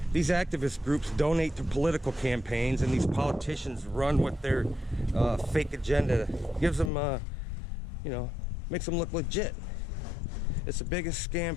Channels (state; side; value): drops out; right; at 6.9 s